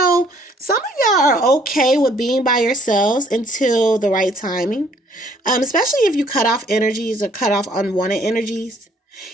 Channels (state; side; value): normal; both; correlation 0.62